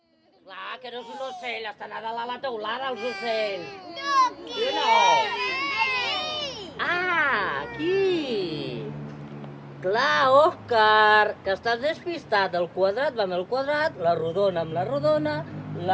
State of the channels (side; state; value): both; identical; correlation 1.00